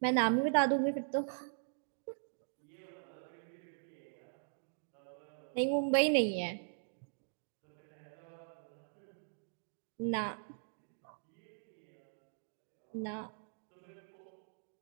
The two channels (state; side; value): silent; left; digital silence